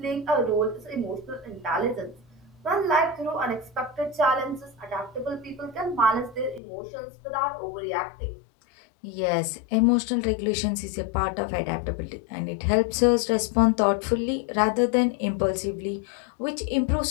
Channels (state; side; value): drops out; right; at 6.6 s